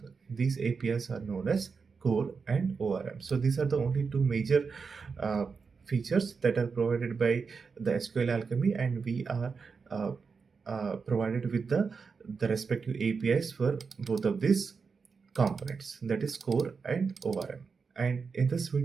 These APIs are known as core and ORM. So these are the only two major uh, features that are provided by the SQLAlchemy, and we are uh, provided with the respective APIs for both of these components, that is core and ORM. And in this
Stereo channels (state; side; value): quieter; left; 5.2 dB